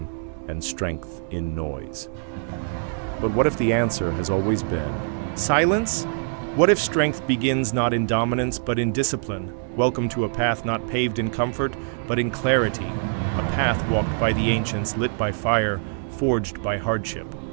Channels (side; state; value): left; silent; 62 dB below the other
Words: and strength in noise. But what if the answer has always been silence? What if strength begins not in dominance but in discipline? Welcome to a path not paved in comfort but in clarity, a path walked by the ancients, lit by fire, forged by hardship.